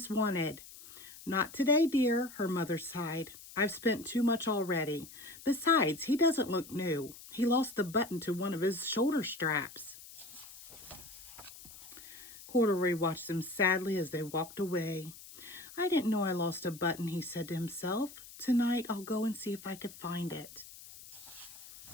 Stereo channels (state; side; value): noise; left; hiss, 17 dB below the sound